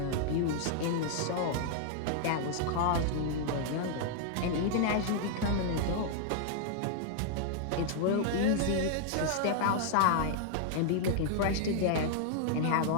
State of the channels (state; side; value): different; both; correlation -0.01